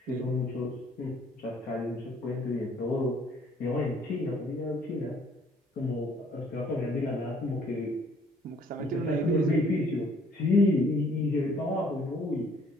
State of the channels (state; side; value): normal; both; correlation 0.60